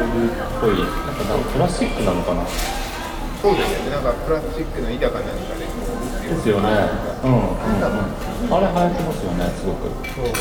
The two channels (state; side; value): identical; both; correlation 1.00